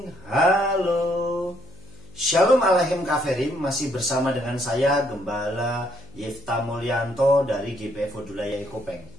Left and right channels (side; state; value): left; noise; hum, 23 dB below the sound